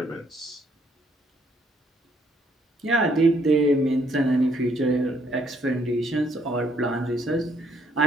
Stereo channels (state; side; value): normal; both; correlation 0.69